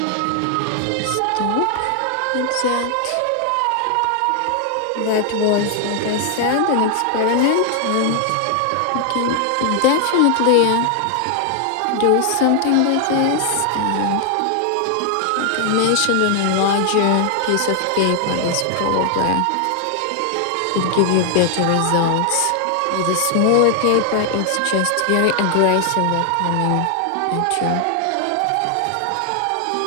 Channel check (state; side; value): different; both; correlation 0.00